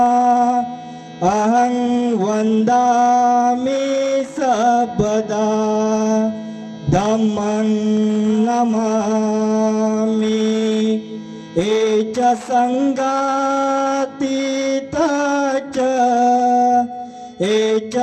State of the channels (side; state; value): both; identical; correlation 1.00